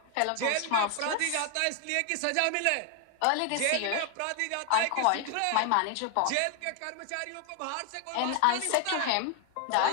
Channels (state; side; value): different; both; correlation 0.00